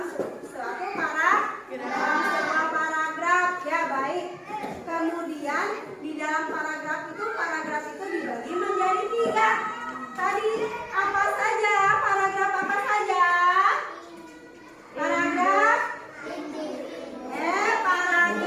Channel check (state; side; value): identical; both; correlation 1.00